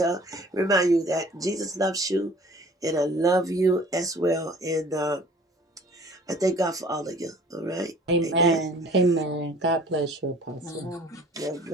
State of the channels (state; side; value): normal; both; correlation 0.50